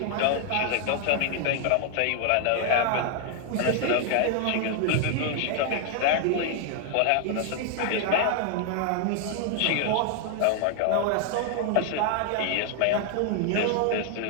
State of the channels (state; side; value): different; both; correlation 0.00